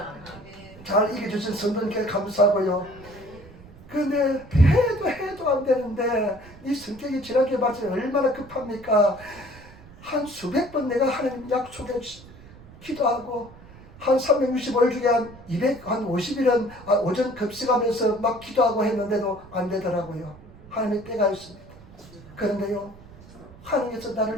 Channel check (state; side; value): noise; right; rumble, 20 dB below the sound